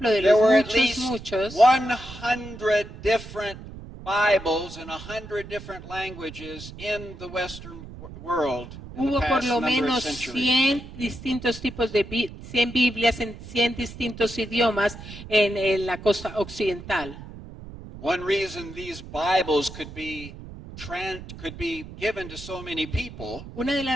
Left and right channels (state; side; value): noise; right; rumble, 14 dB below the sound